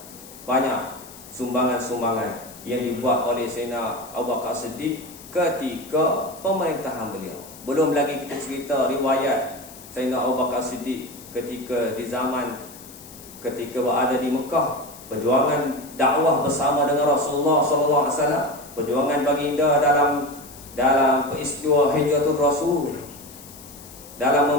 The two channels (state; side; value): noise; left; hiss, 18 dB below the sound